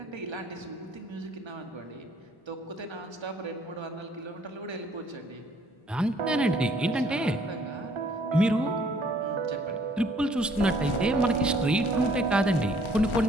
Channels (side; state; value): both; normal; correlation 0.61